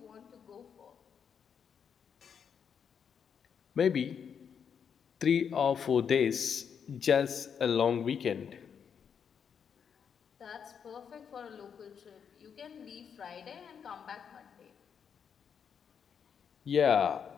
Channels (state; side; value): quieter; right; 7.3 dB